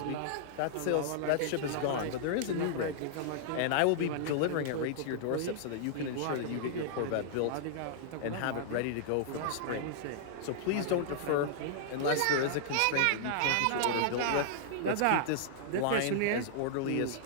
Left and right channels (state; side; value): different; both; correlation -0.01